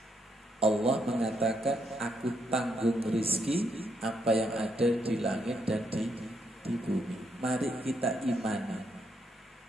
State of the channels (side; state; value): both; normal; correlation 0.77